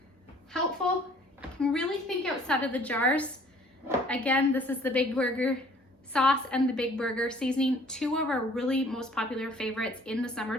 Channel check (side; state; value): both; normal; correlation 0.55